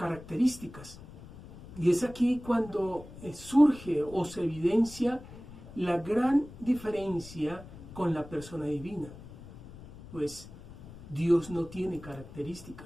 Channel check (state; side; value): noise; left; rumble, 16 dB below the sound